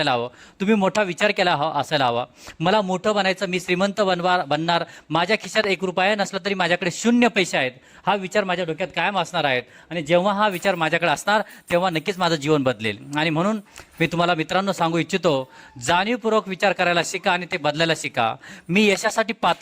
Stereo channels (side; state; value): both; identical; correlation 1.00